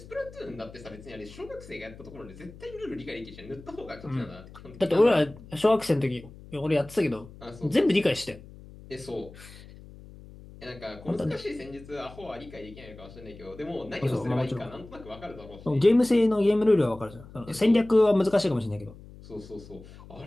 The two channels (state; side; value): noise; left; hum, 18 dB below the sound